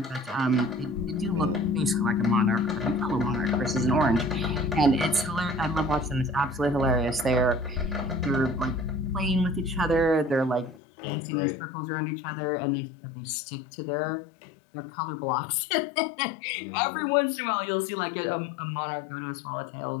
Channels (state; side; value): drops out; right; at 10.8 s